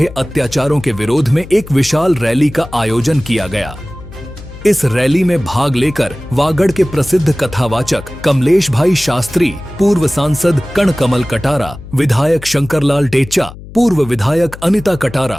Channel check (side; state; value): left; noise; hum, 16 dB below the sound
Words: अत्याचारों के विरोध में एक विशाल रैली का आयोजन किया गया। इस रैली में भाग लेकर वागड़ के प्रसिद्ध कथावाचक कमलेश भाई शास्त्री, पूर्व सांसद कणकमल कटारा, विधायक शंकरलाल टेचा, पूर्व विधायक अनिता